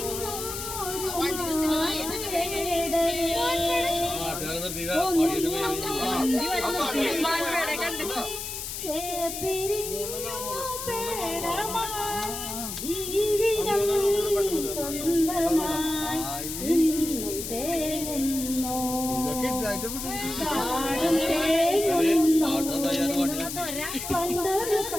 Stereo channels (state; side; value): noise; left; hiss, 6 dB below the sound